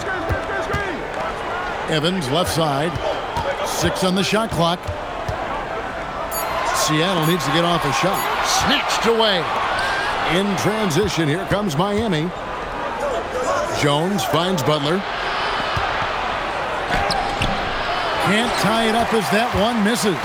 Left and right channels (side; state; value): both; identical; correlation 1.00